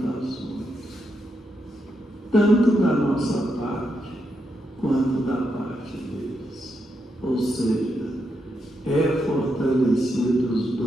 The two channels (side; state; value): both; normal; correlation 0.83